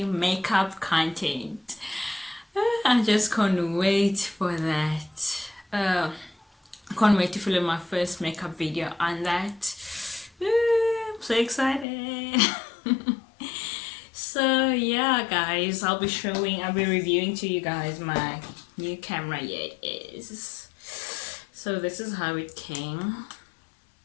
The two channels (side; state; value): right; drops out; at 11.9 s